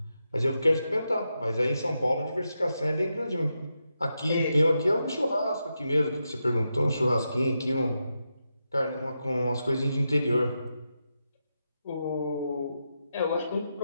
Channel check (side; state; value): both; inverted; correlation -0.86